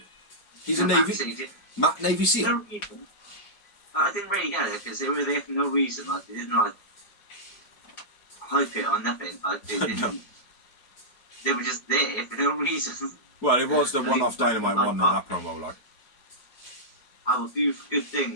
he's a Navy. Matt Navy SEAL. No reason. I didn't really get it because they were there for no reason. Like they didn't like hype it or nothing. Like they didn't. No. They were just there for no reason. Well, it was the one-off Dynamite one in that promo, like. I will do good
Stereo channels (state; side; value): late; right; 4.7 ms